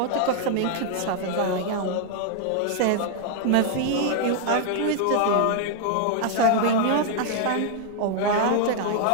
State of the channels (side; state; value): both; different; correlation 0.00